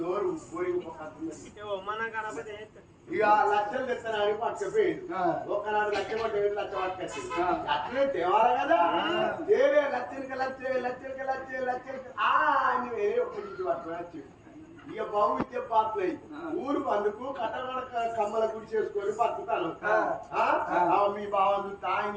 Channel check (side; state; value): both; identical; correlation 1.00